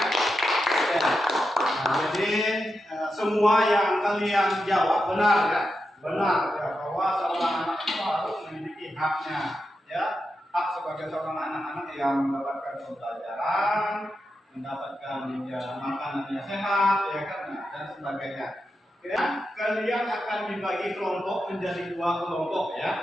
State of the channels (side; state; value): both; normal; correlation 0.88